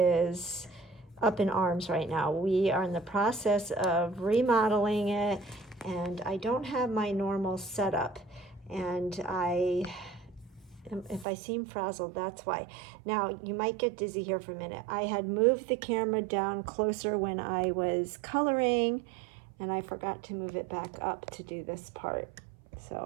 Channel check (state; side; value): drops out; left; at 11.2 s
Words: up in arms right now. We are in the process of remodeling it, and I don't have my normal setup. And if I seem frazzled, that's why. Now, you might get dizzy here for a minute. I had moved the camera down closer when I was coloring, and I forgot to move it back up to do this part.